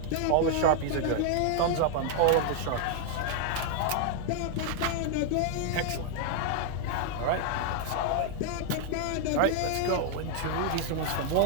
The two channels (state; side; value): different; both; correlation 0.00